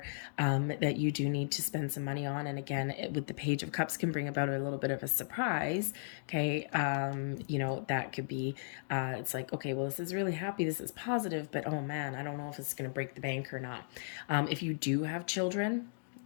that you do need to spend some money on. And again, with the Page of Cups can bring about a little bit of a surprise. Okay. That could be, it's like, okay, well, this is really happy. This is positive, but oh man, I don't know if it's going to break the bank or not. If you do have children,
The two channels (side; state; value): right; silent; digital silence